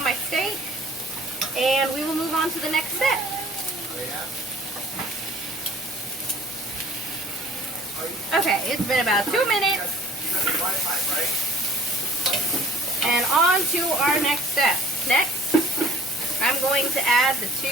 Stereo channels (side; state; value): both; normal; correlation 0.52